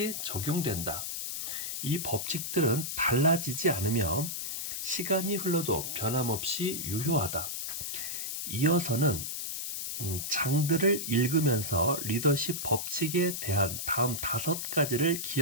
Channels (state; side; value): noise; left; hiss, 4 dB below the sound